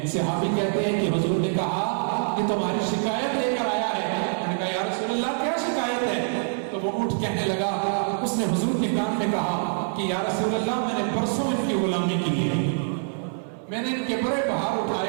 صحابی کہتے ہیں کہ حضور نے کہا کہ تمہاری شکایت لے کر آیا ہے. میں نے کہا یا رسول اللہ کیا شکایت ہے؟ تو وہ اٹھ کہنے لگا، اس نے حضور کے کان میں کہا کہ یا رسول اللہ میں نے پرسوں ان کی غلامی کی ہے، میں نے ان کے بڑے بہار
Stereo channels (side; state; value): left; silent; 58 dB below the other